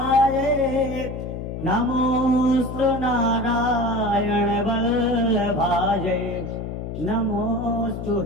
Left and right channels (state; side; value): noise; left; hum, 7 dB below the sound